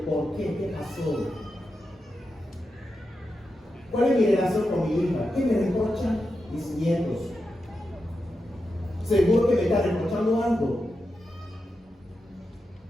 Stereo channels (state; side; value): normal; both; correlation 0.89